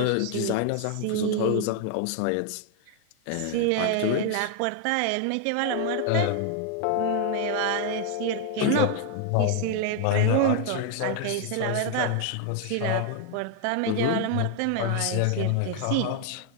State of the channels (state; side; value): different; both; correlation 0.00